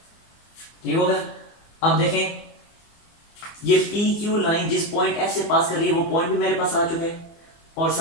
ठीक हो गया। अब देखें, ये PQ लाइन जिस पॉइंट F से पास कर रही है वो पॉइंट भी मेरे पास आ चुके हैं, और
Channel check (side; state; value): right; late; 24 ms